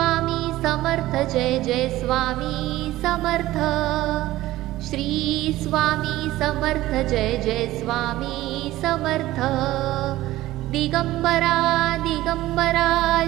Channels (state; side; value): quieter; left; 16.3 dB